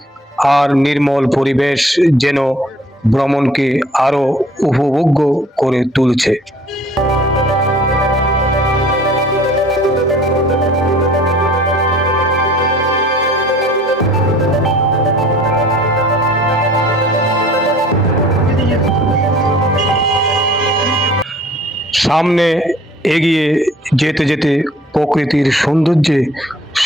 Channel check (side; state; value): both; normal; correlation 0.52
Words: আর নির্মল পরিবেশ যেন ভ্রমণকে আরো উপভোগ্য করে তুলছে। সামনে এগিয়ে যেতে যেতে প্রকৃতির সৌন্দর্যে